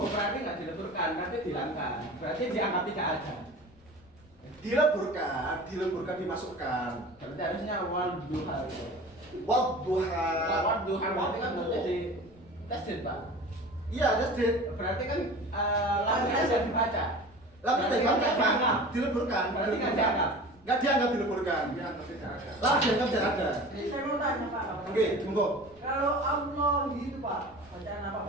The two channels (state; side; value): noise; left; rumble, 28 dB below the sound